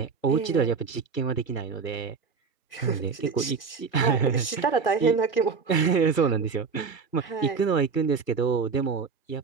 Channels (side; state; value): left; quieter; 5.3 dB